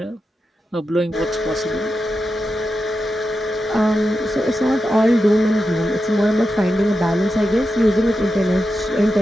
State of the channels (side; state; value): both; normal; correlation 0.89